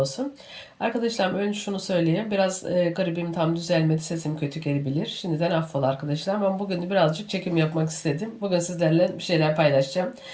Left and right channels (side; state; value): both; identical; correlation 1.00